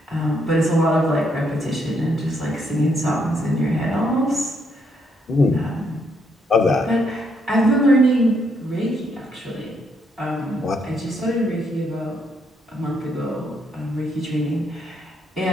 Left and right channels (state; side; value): normal; both; correlation 0.74